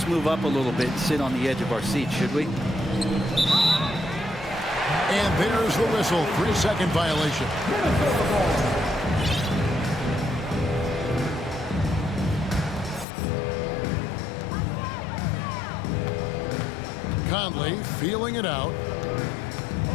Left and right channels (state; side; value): drops out; right; at 13.1 s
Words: move up a little bit and sit on the edge of our seat, should we? And there's the whistle. 3-second violation. Conley feeling it out.